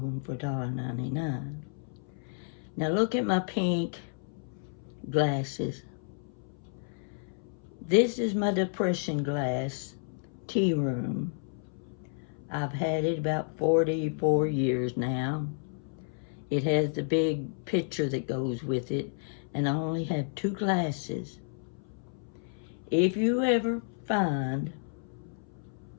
them for $1.99. Now look at my pink glasses. This is my depression glass tea room. I've had it about 44 years now. It has the big picture that goes with it, and I only have 2 glasses. If you ever find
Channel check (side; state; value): right; silent; 57 dB below the other